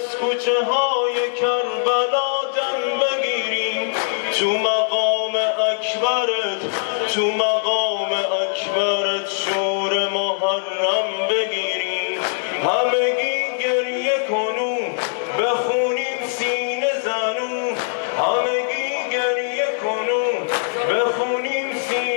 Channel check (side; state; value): right; silent; 65 dB below the other